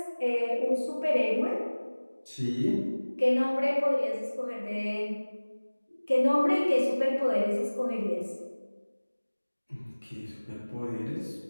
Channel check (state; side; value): inverted; both; correlation -1.00